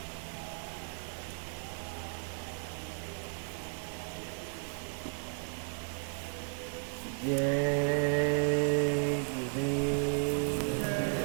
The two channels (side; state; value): left; silent; 55 dB below the other